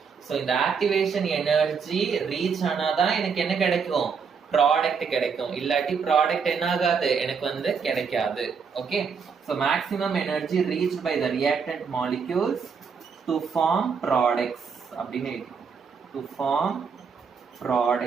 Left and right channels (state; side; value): quieter; left; 5.9 dB